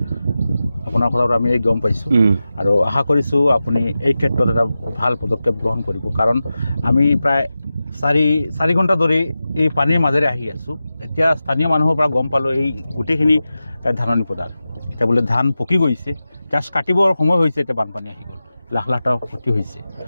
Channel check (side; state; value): both; inverted; correlation -0.94